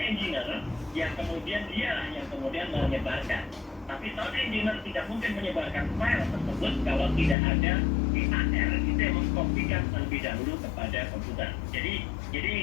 engineer yang kemudian yang menyebarkan. Tapi sound engineer tidak mungkin menyebarkan file tersebut kalau tidak ada di AR itu yang mengkopikan terlebih dahulu kepada komputer. Jadi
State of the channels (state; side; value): drops out; right; at 7.4 s